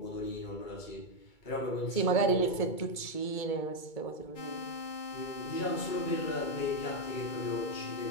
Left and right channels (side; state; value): right; late; 2.2 ms